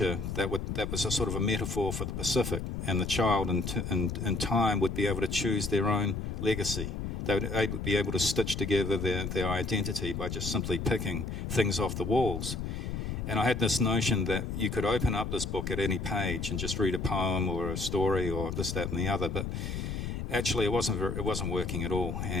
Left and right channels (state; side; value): noise; left; rumble, 4 dB below the sound